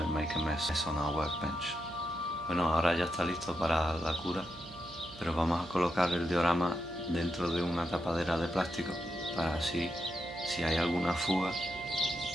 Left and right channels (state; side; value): noise; right; hum, 17 dB below the sound